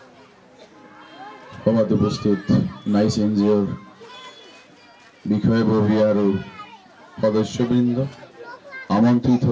সভাত উপস্থিত নাইচ এনজিঅ'ৰ বিষয়ববী আৰু সদস্যবৃন্দ, আমন্ত্ৰিত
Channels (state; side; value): identical; both; correlation 1.00